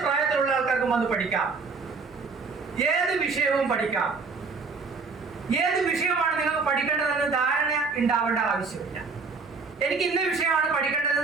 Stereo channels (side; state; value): left; quieter; 4.6 dB